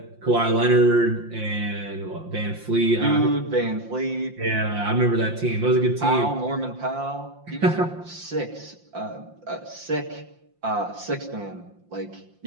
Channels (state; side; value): late; left; 5.7 ms